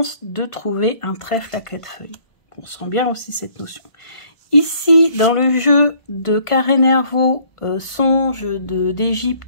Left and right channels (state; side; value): late; right; 1.4 ms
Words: de trouver un trèfle à 4 feuilles. On sent bien aussi cette notion. Ici, dans le jeu de Carré Nervaux, Songe